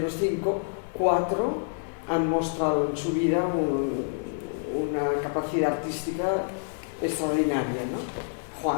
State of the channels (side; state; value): right; silent; digital silence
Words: 5, 4 han mostrado en su vida una capacidad artística extraordinaria, ¿no?